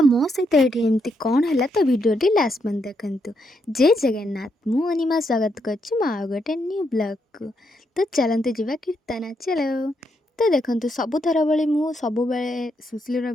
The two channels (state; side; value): normal; both; correlation 0.79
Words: मो सहित ये एमती कौन है तो वीडियो लास्ट मन देखु। जय जगन्नाथ मु अनिमा स्वागत कर गोटे न्यू ब्लॉग को। तो चलते जावा कीर्तन चलो। तो देखो सबुथर भाई मुझे सब सुशील